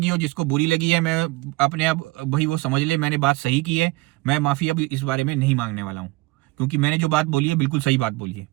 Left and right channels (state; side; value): quieter; left; 21.9 dB